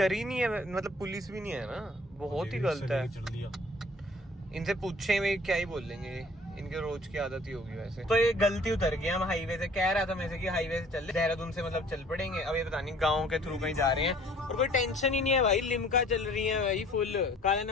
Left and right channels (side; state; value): both; normal; correlation 0.53